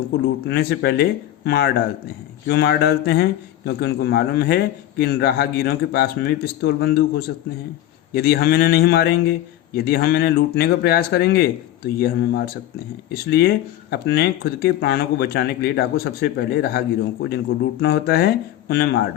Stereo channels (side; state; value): right; quieter; 13.1 dB